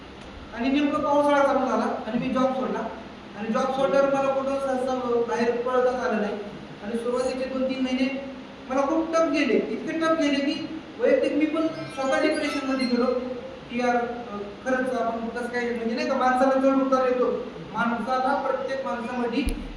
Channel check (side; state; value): both; identical; correlation 1.00